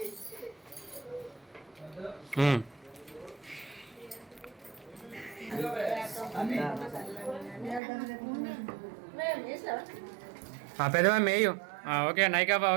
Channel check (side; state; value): left; drops out; at 7.8 s